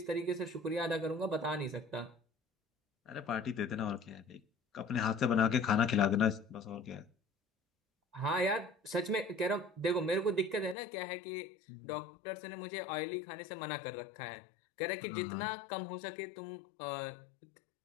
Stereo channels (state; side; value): drops out; right; at 10.8 s